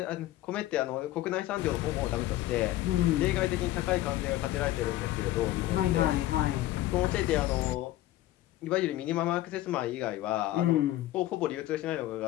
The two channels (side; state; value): right; quieter; 15.4 dB